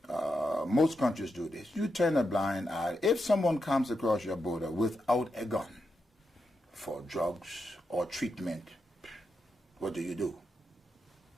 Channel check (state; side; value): normal; both; correlation 0.86